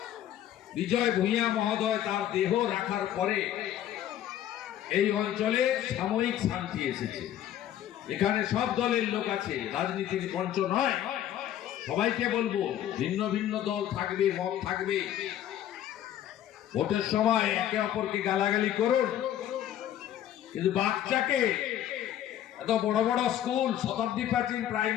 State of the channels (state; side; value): quieter; right; 11.5 dB